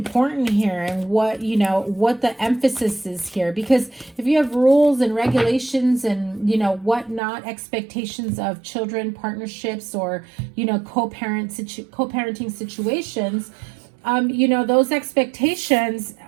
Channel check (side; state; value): left; drops out; at 7.2 s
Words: here and what, you know, what the emphasis is here. Because if you have rules and regulations and, you know, whatnot, expectations of children, partnerships, or, you know, co-parenting situations, you know, those expectations